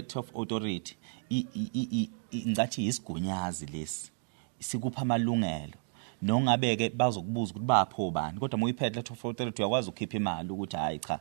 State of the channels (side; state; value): left; silent; digital silence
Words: of authority ngathi isigunyazi lesi sikupha amalungelo nongabeke bazokubuza ukuthi bapho bani kodwa moyiphethe letter of authority uyakwazi ukukhipha imali ukuthi hayi cha